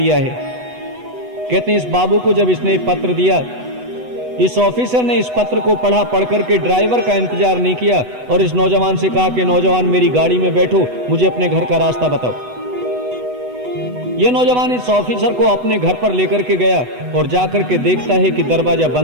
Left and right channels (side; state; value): left; late; 8.1 ms